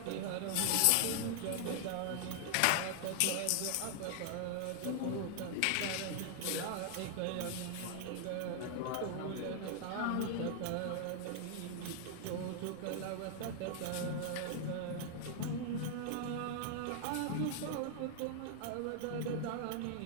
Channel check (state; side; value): different; both; correlation 0.00